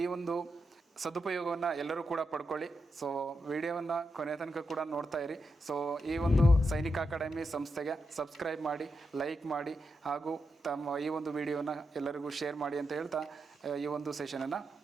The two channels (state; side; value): normal; both; correlation 0.86